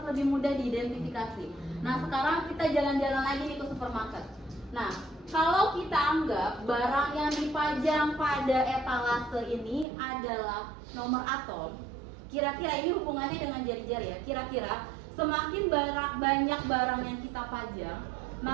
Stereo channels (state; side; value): drops out; left; at 9.9 s